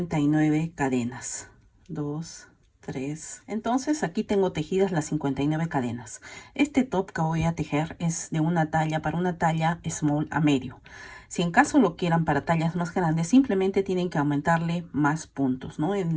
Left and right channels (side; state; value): both; identical; correlation 1.00